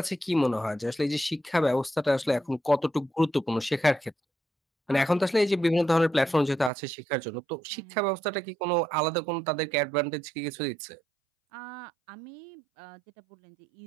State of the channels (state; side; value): drops out; left; at 6.7 s